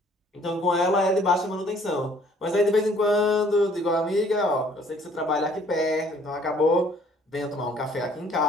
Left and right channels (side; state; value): both; normal; correlation 0.59